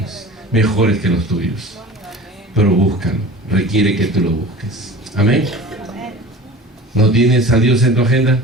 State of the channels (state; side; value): normal; both; correlation 0.38